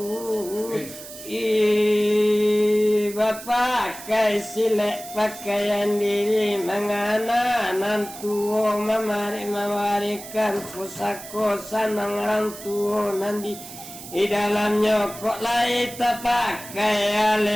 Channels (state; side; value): noise; right; hiss, 14 dB below the sound